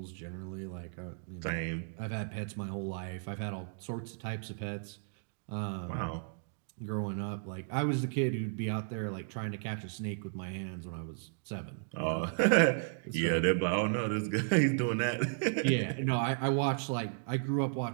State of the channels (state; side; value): silent; left; digital silence